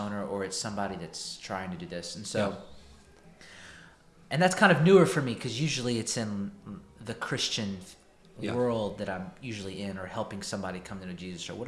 or it's somebody that's trying to do this. And so, and that's kind of newer for me because usually it's in the Christian world that I'm usually in or helping somebody come to know Jesus or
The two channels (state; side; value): identical; both; correlation 1.00